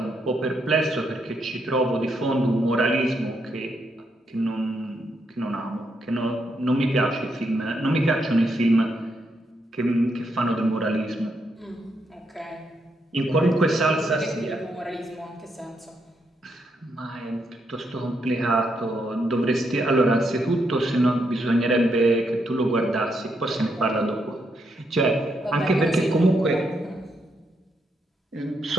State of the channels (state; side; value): normal; both; correlation 0.79